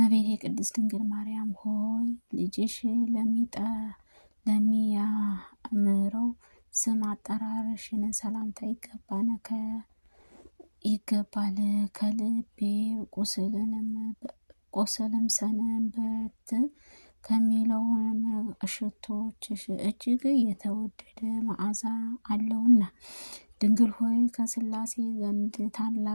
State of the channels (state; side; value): inverted; both; correlation -1.00